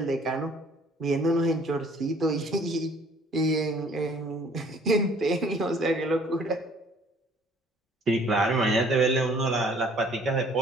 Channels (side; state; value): both; normal; correlation 0.56